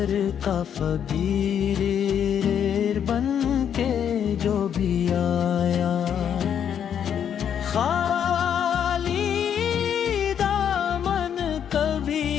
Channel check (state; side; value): quieter; right; 8.7 dB